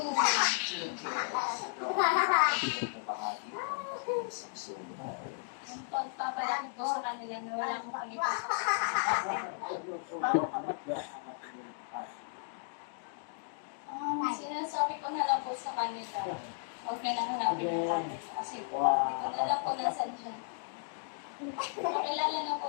2 kids. Bahagi mo sa Yung pagpapalaki po sa kanila na wala akong pangipasok. Sinasabi ko na lang po sa kanila. Huwag na lang hanapin yung kanila. Kasi po, hindi ko na lang po nasan siya. Makilala na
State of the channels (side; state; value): right; silent; digital silence